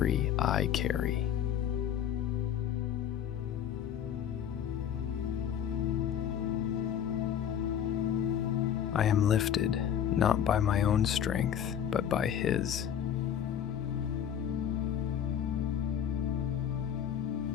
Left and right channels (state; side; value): quieter; right; 9.3 dB